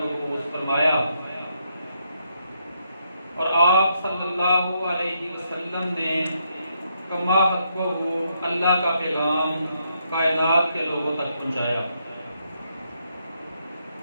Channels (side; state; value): both; inverted; correlation -0.77